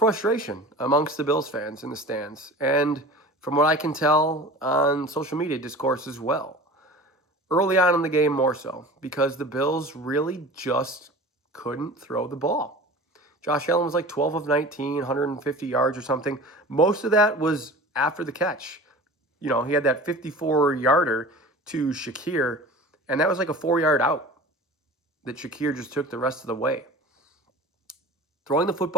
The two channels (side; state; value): both; normal; correlation 0.38